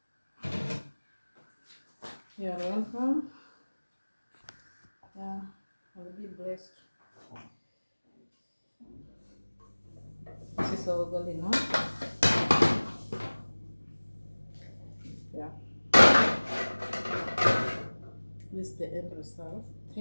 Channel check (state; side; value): inverted; both; correlation -1.00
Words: You are welcome. Yeah, and be blessed. This is our ugali now. Yeah. This is the end result.